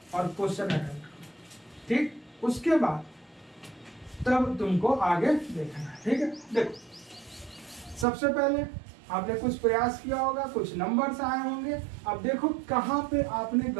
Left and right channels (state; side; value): drops out; left; at 8.1 s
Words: और क्वेश्चन अटेम्प्ट करो। ठीक, उसके बाद तब तुमको आगे देखना है। ठीक है, देखो सबसे पहले आपने कुछ प्रयास किया होगा, कुछ नंबर्स आए होंगे। अब देखो कहाँ पे आपने